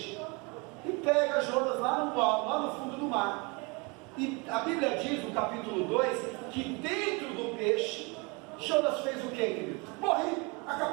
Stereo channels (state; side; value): quieter; left; 28.8 dB